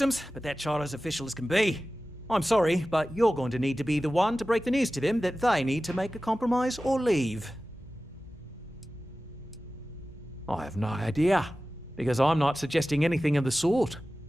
but that charter's official as can be. I'm sorry, but you're going to need to be the one to break the news to them that they need to make a compromise or leave. I have no idea, because I'm not suggesting anything of the sort.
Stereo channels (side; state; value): both; normal; correlation 0.96